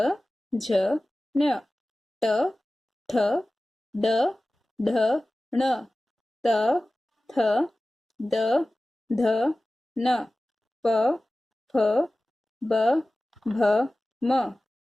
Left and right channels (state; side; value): normal; both; correlation 0.97